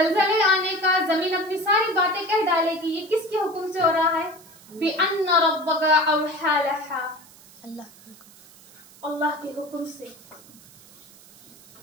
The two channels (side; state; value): right; noise; hiss, 23 dB below the sound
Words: आने का, जमीन अपनी सारी बातें कह डालेगी। ये किसके हुक्म से हो रहा है? बिअन्न रब्बका अवहा लहा, अल्लाह के हुक्म से।